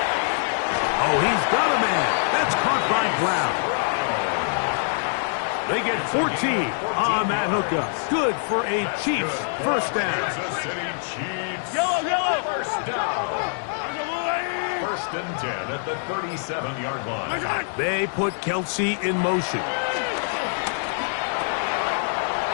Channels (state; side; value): silent; right; digital silence